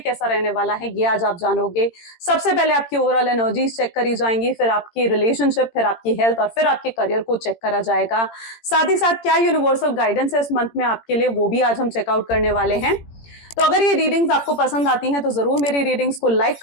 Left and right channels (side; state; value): right; late; 18 ms